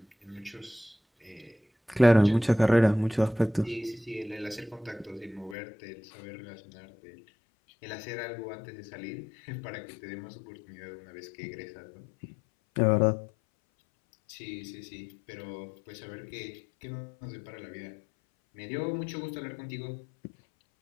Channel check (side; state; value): right; drops out; at 5.6 s